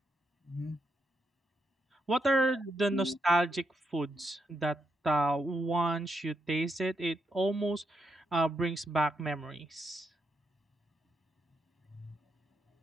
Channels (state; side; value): normal; both; correlation 0.81